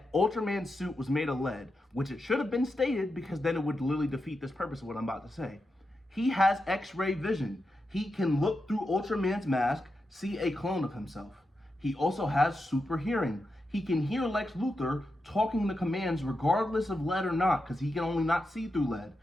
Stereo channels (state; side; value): normal; both; correlation 0.88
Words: Ultraman's suit was made of lead, which it should have been stated because then it would literally defeat this purpose of what I'm about to say. He has X-ray vision. He can look through Ultraman's mask, see a clone of himself. He also has super hearing. He can hear Lex Luthor talking the commands regardless of lead or not, because he can only not see through lead.